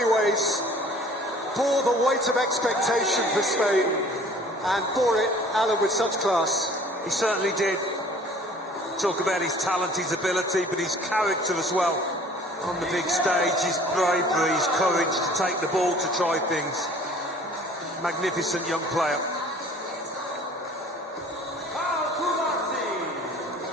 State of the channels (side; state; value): both; normal; correlation 0.51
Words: ways, bore the weight of expectation for Spain, and bore it, Alan, with such class. He certainly did. Talk about his talent, his ability, but his character as well. On the big stage, his bravery, his courage to take the ball, to try things. Magnificent young player.